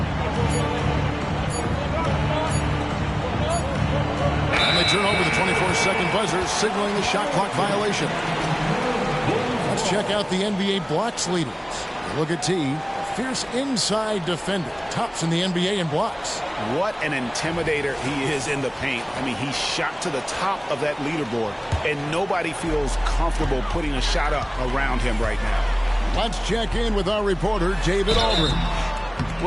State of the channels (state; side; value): identical; both; correlation 1.00